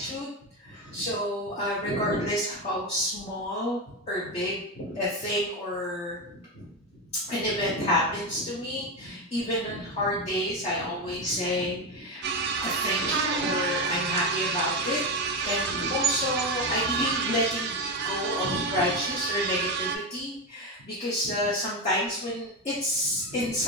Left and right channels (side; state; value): both; normal; correlation 0.13